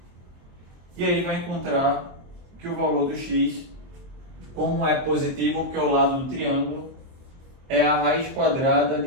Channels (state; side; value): late; left; 23 ms